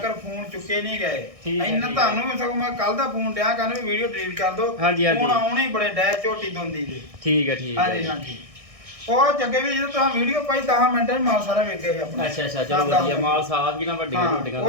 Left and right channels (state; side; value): late; left; 1.6 ms